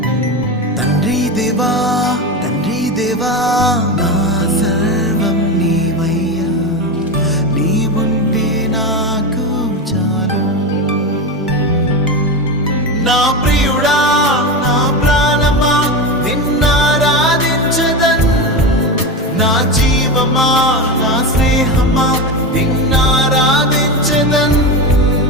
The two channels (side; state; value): both; normal; correlation 0.19